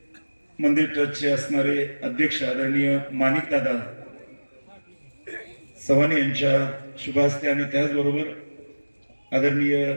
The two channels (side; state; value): both; inverted; correlation -1.00